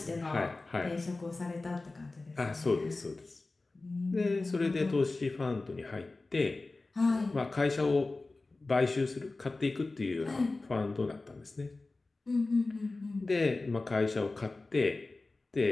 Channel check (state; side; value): quieter; right; 3.3 dB